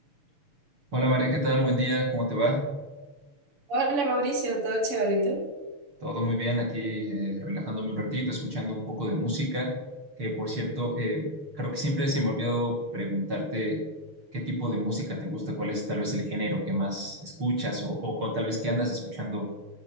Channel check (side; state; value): left; late; 6.5 ms